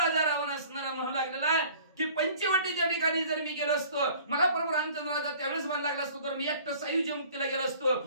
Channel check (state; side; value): inverted; both; correlation -0.49